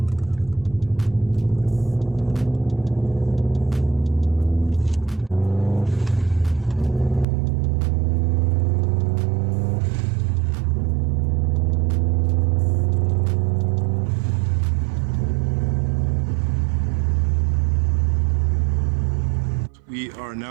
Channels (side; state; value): left; drops out; at 7.2 s